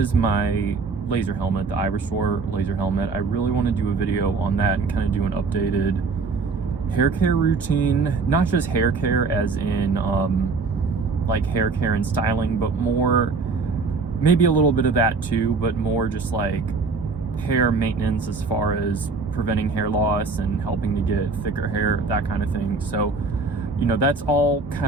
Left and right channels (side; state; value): left; quieter; 4.3 dB